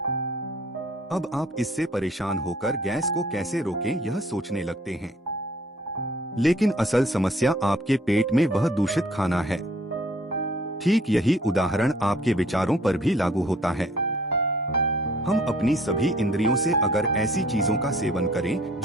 अब आप इससे परेशान होकर गैस को कैसे रोकें यह सोचने लगते हैं। लेकिन असल समस्या आपके पेट में वह दूषित खाना है। ठीक यही उदाहरण आपके विचारों पर भी लागू होता है। हम अपनी सभी इंद्रियों से अगर ऐसी चीजों का सेवन करें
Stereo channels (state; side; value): normal; both; correlation 0.57